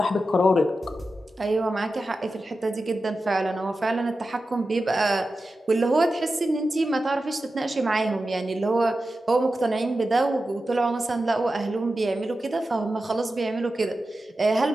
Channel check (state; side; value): normal; both; correlation 0.92